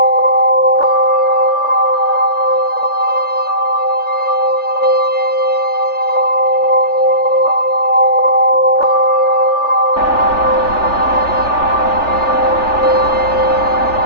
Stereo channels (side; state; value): right; late; 3.4 ms